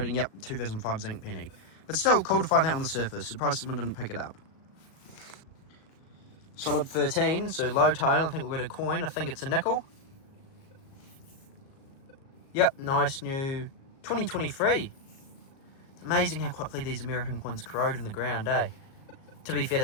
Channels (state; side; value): late; right; 37 ms